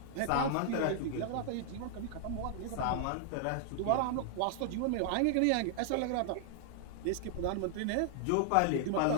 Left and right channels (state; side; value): different; both; correlation 0.00